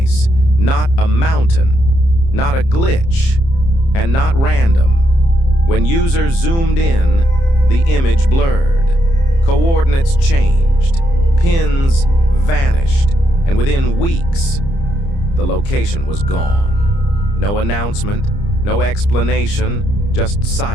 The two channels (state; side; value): late; right; 30 ms